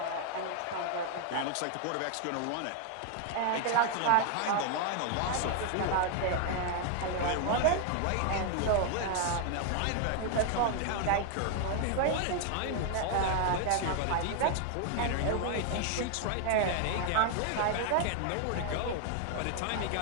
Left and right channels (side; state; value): both; different; correlation 0.00